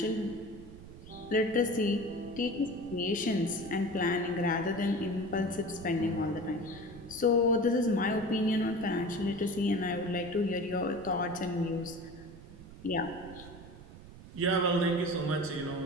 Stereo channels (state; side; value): noise; right; rumble, 16 dB below the sound